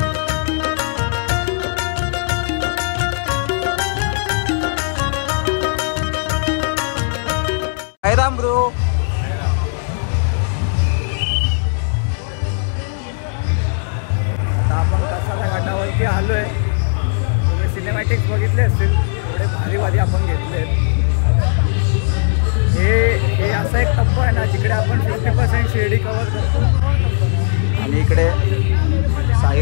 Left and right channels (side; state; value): right; silent; digital silence